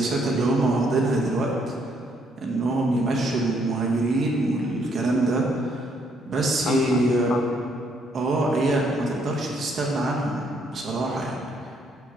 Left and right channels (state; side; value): normal; both; correlation 0.71